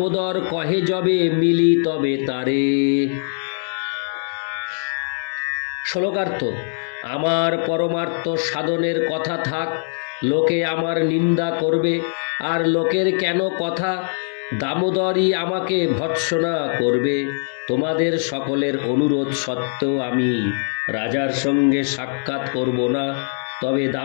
কহে যবে মিলি তবে তারে। শ্লোকার্থ। আমার পরমার্থ সাধনের কথা থাক, লোকে আমার নিন্দা করবে, আর লোকের কেন কথা, দামোদরই আমাকে ভৎসনা করবে। তোমাদের সকলের অনুরোধ সত্ত্বেও আমি রাজার সঙ্গে সাক্ষাৎ করব না, তবে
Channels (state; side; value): silent; right; digital silence